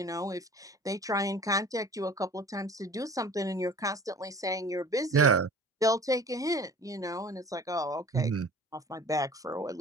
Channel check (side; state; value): both; normal; correlation 0.44